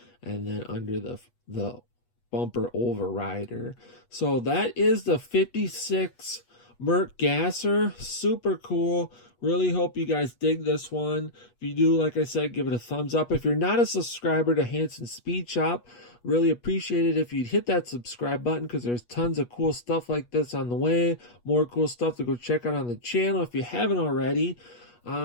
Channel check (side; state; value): right; late; 8.3 ms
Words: and then under the bumper overrider. So that is the 56 Merc gasser. Super cool. Really hope you guys dig this one. If you do, like I said, give it a thumbs up. If you're not a subscriber to Hansen Speed Shop, really appreciate it if you'd hit that subscribe button, because there's tons of cool stuff like this on the way. More cool stuff to go check out on the channel if you haven't already.